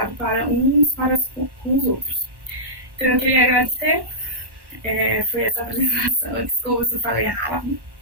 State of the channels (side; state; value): left; late; 1.1 ms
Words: para uns com os outros. Então eu queria agradecer. Foi essa apresentação. Desculpa se eu falei rápido.